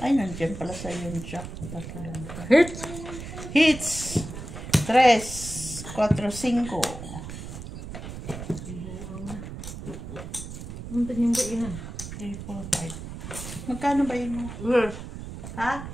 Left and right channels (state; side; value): noise; right; rumble, 10 dB below the sound